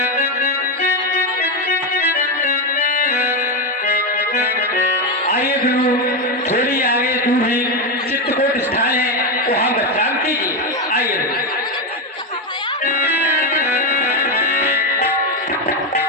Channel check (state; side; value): normal; both; correlation 0.09